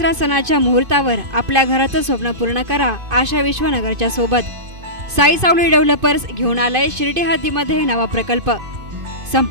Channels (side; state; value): left; late; 2.5 ms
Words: सणाच्या मुहूर्तावर आपल्या घराचं स्वप्न पूर्ण करा आशा विश्वनगरच्या सोबत. साई सावली डेव्हलपर्स घेऊन आलंय शिर्डी हद्दीमध्ये नवा प्रकल्प.